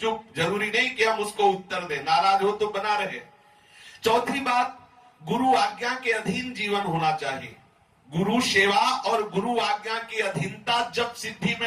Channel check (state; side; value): identical; both; correlation 1.00